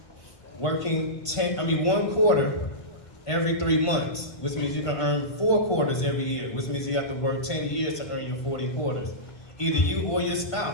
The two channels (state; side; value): late; right; 1.5 ms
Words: working 1 quarter every 3 months, which means you can earn 4 quarters every year, which means you have to work 10 years to earn your 40 quarters. Either you or your